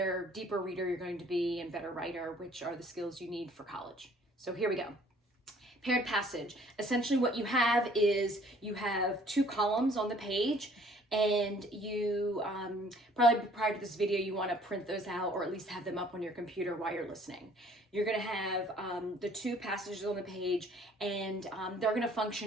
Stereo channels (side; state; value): both; normal; correlation 0.57